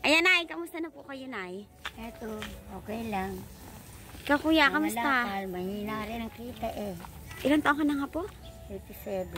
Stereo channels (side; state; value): both; identical; correlation 1.00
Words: Ayan, Nay, kamusta na po kayo, Nay? Eto, okay lang. Ikaw, Kuya, kamusta? Malakal, mahina rin ang kita eh. Ilang taon ka na nga po?